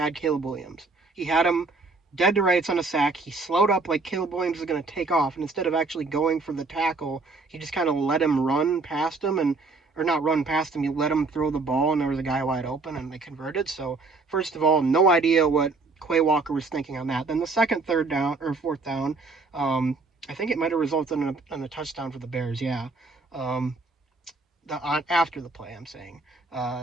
Caleb Williams. He had him dead to rights on a sack. He slowed up like Caleb Williams was going to take off, and instead of actually going for the tackle, he just kind of let him run past him, or not run past him, he let him throw the ball, and there was a guy wide open, and they converted. So, first of all, no idea what Quay Walker was thinking on that. Then the 4th down, I think it might have resulted in a touchdown for the Bears, yeah. After the play, I'm saying.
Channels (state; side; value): quieter; left; 3.8 dB